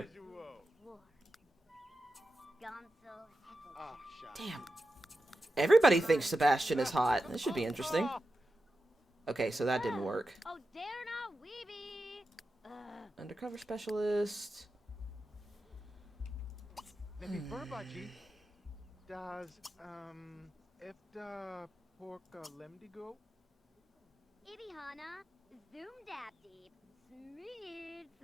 Damn. Everybody thinks Sebastian is hot. This should be interesting. Okay, so that didn't work. Undercover specialist.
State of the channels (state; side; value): normal; both; correlation 0.91